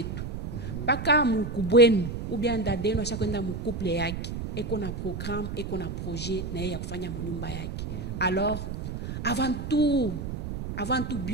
Pas qu'à Moukoubuenu ou bien d'adeno à chaque fois mon couple yaki. Et qu'on a programme, et qu'on a projet, na ya kufanya monyumba yaki. Alors, avant tout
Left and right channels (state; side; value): noise; right; rumble, 6 dB below the sound